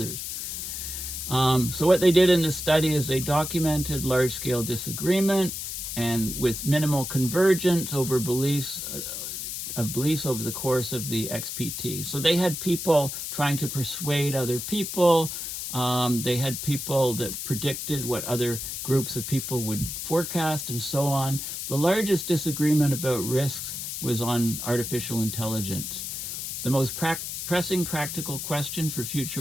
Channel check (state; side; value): noise; left; hiss, 5 dB below the sound